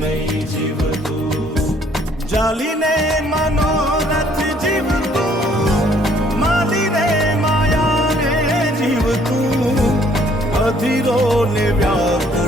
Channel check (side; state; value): both; normal; correlation 0.62